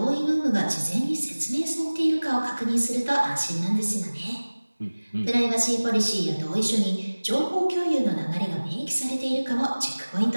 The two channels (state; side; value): inverted; both; correlation -1.00